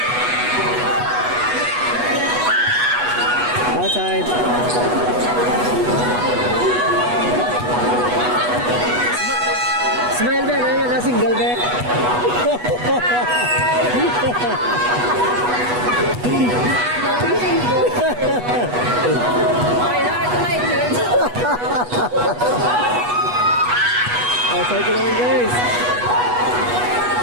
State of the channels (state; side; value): late; left; 8.2 ms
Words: Outside. Smile Ben, ayun na single Ben. Outside ko naman guys.